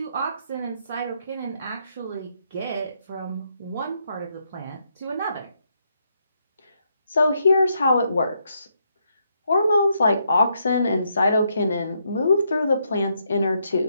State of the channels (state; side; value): inverted; both; correlation -0.77